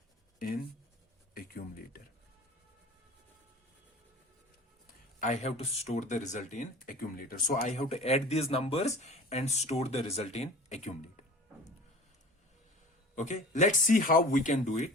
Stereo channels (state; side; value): normal; both; correlation 0.41